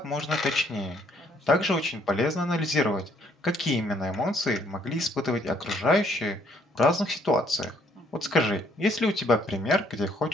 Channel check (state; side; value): normal; both; correlation 0.66